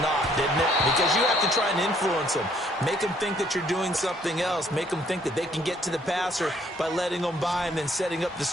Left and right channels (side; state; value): both; normal; correlation 0.64